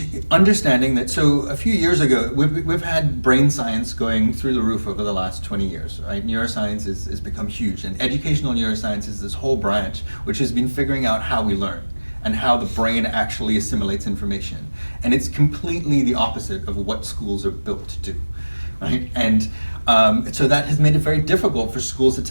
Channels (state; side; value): inverted; both; correlation -1.00